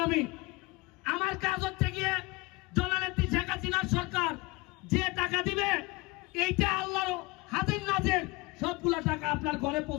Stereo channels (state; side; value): quieter; right; 24.7 dB